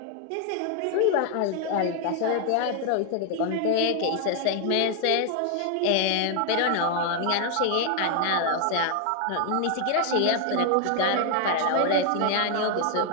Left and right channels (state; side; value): different; both; correlation 0.00